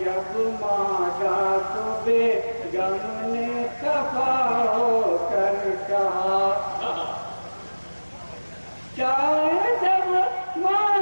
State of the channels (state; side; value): inverted; both; correlation -1.00